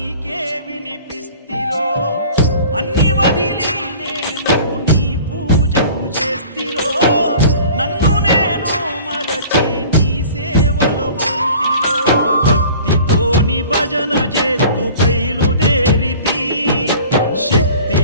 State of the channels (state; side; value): inverted; both; correlation -0.45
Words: వినిపిస్తిరో, అన్ని వదిలి నేను నీ పూజకు చేస్తిరో, నన్ను నేను మరచి నీ సేవలో ఉంటిరో. భక్తితోని భజన చేస్తూ బయలుదేరితి,